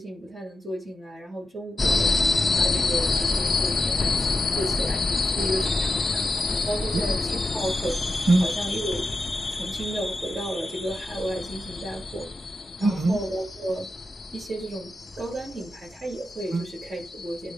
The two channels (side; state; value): both; normal; correlation 0.90